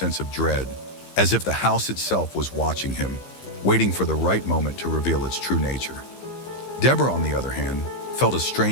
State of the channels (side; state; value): right; late; 15 ms